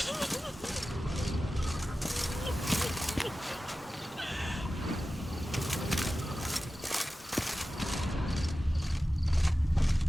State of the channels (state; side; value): normal; both; correlation 0.95